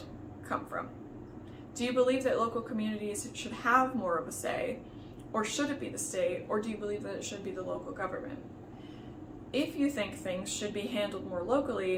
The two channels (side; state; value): both; identical; correlation 1.00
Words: come from? Do you believe that local communities should have more of a say, or should it be the state, or do you believe that it should be the local government? If you think things should be handled more